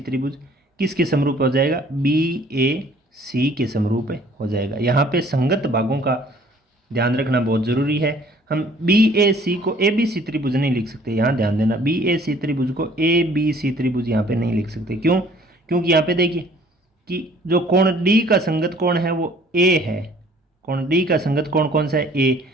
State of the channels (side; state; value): both; normal; correlation 0.56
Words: किसके समरूप हो जाएगा, बी ए सी के समरूप हो जाएगा। यहाँ पे संगत भागों का ध्यान रखना बहुत ज़रूरी है। हम बी ए सी को ए बी सी त्रिभुज नहीं लिख सकते, यहाँ ध्यान देना, बी ए सी त्रिभुज को ए बी सी त्रिभुज यहाँ पे नहीं लिख सकते। क्यों, क्योंकि यहाँ पे देखिए कि जो कोण डी का संगत कोण है वो ए है, कोण डी का संगत कोण कौन सा है, ए,